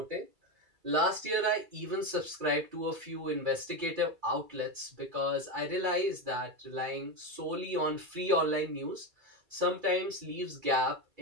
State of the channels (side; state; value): left; late; 2.3 ms